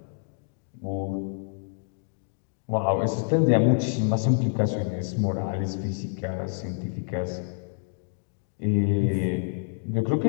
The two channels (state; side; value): silent; right; digital silence